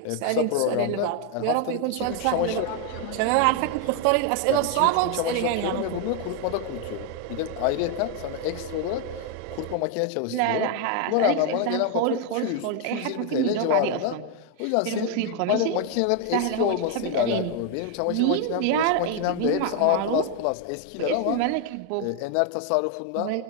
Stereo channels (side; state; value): both; different; correlation 0.01